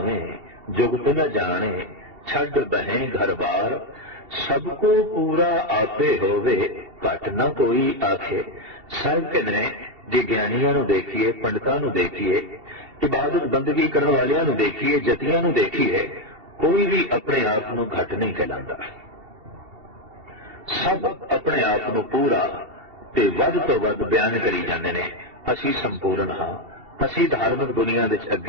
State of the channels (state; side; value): late; left; 2.7 ms